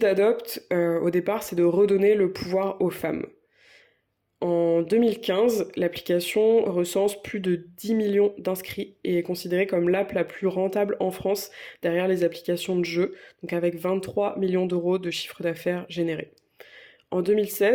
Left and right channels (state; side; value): identical; both; correlation 1.00